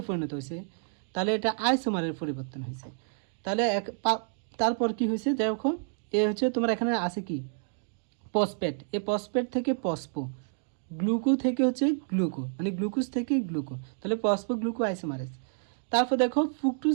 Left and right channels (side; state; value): left; silent; digital silence